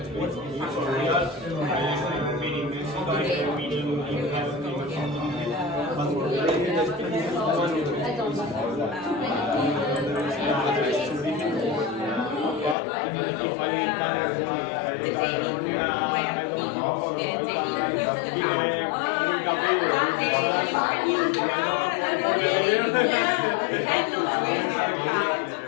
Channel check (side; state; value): right; drops out; at 12.8 s